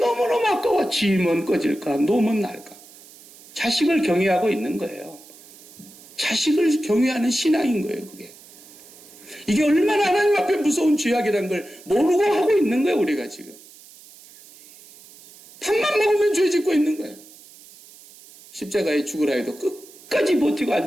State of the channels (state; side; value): noise; right; hiss, 22 dB below the sound